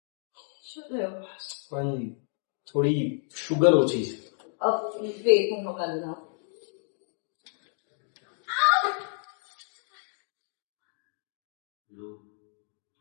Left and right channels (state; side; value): silent; right; 58 dB below the other